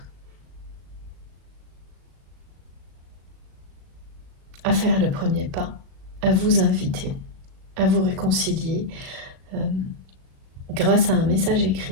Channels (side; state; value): left; late; 37 ms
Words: à faire le premier pas, à vous inviter, à vous réconcilier grâce à un message